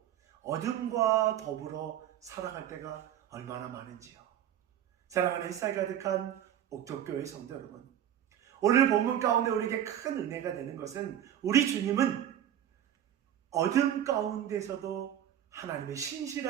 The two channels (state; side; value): quieter; left; 10.7 dB